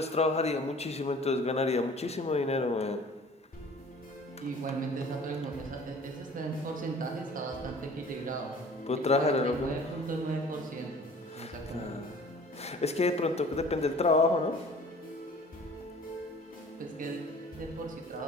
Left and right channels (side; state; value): both; normal; correlation 0.48